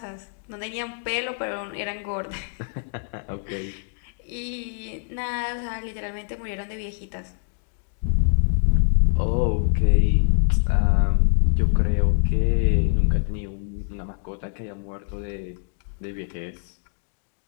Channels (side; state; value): right; silent; digital silence